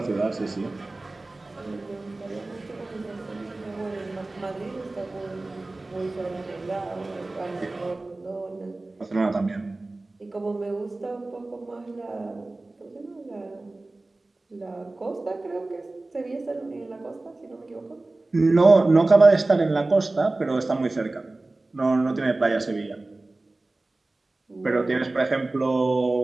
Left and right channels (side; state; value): left; quieter; 3.1 dB